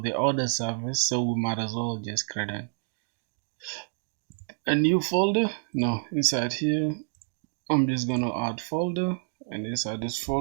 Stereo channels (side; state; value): left; silent; digital silence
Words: the order service, so we might as well just create a new folder. No, inside here, I'm just gonna add folder, and inside this